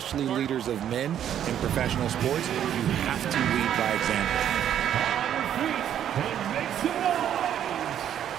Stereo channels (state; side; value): quieter; left; 10.1 dB